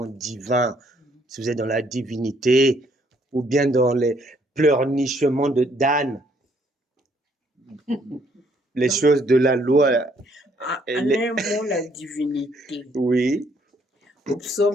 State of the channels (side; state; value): both; normal; correlation 0.67